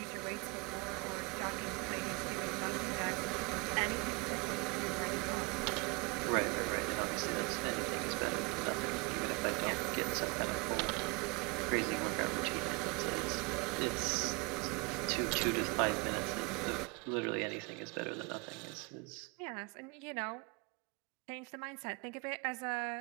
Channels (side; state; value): left; quieter; 26.7 dB